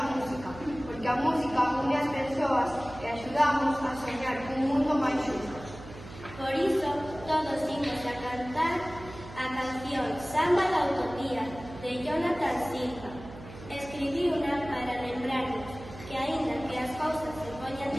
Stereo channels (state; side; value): noise; right; hum, 15 dB below the sound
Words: música, porque a música une as persoas e axudamos a soñar un mundo máis xusto. Por iso, todos imos a cantar a canción Samba da Utopía, de Jonathan Silva. Escribiuna para lembrarnos que, aínda que as cousas se poñan